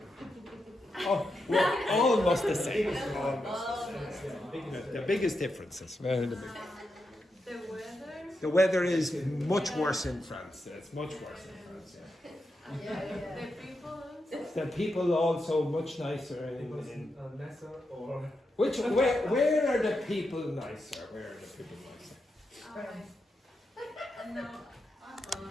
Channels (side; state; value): both; normal; correlation 0.86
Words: Oh, we're almost the same. Biggest The biggest differences. Very the big. the weather. The weather is much worse in France. It's much worse in France. Yeah. The people. The people also much nicer Because in nicer or where are the people nicer? Where are the people nicer? No. No.